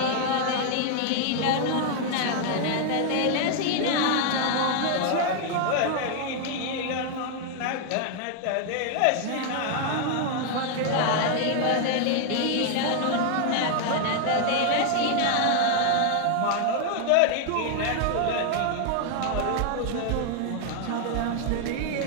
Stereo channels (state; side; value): different; both; correlation 0.00